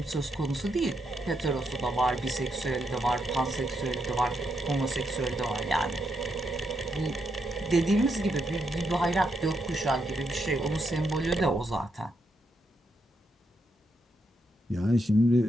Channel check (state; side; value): normal; both; correlation 0.80